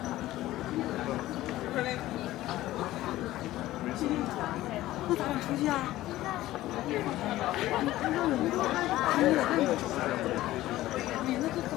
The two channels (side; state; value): right; quieter; 15.8 dB